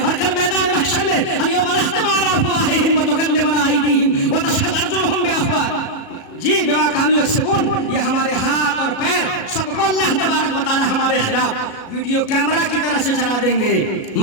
اور کل میدان محشر میں الیوم نختم علی افواہہم وتکلمنا ایدیہم وتشہد ارجلہم بأفواہہم، جی بما کانوا یکسبون، یہ ہمارے ہاتھ اور پیر سب کو اللہ تبارک و تعالی ہمارے خلاف ویڈیو کیمرہ کی طرح سے چلا دیں گے۔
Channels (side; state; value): right; late; 37 ms